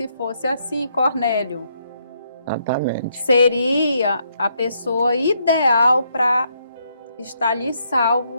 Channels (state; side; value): inverted; both; correlation -0.75